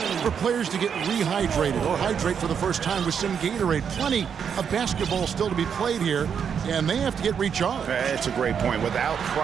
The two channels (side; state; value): left; quieter; 7.3 dB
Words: for players to get rehydrated or hydrate for the first time with some Gatorade. Plenty of basketball still to be played here, and they have to get recharged. That's a great point. Without